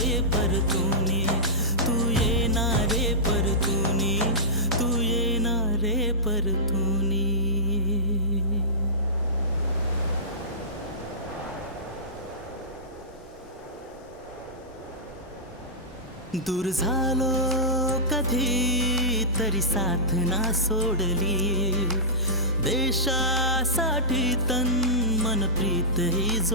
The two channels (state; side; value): normal; both; correlation -0.17